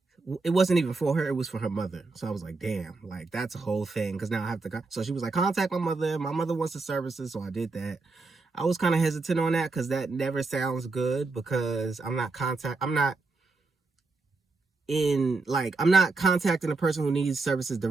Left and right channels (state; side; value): quieter; left; 3.8 dB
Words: it wasn't even for her, it was for her mother. So I was like, damn, like that's a whole thing, because now I have to so she was like, contact my mother wants the services. So I did that. I was kind of hesitant on that, because that never sounds good, because I'm not contacting the person who needs services